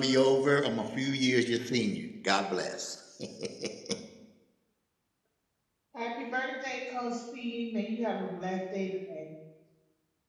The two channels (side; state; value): both; identical; correlation 1.00